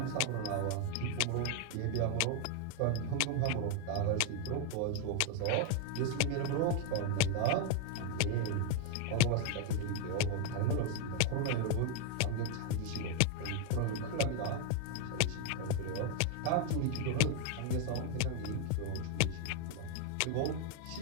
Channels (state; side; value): different; both; correlation 0.01